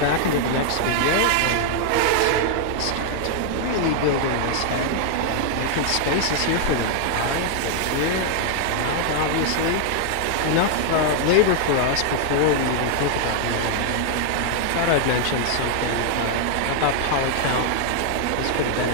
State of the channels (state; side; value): different; both; correlation 0.00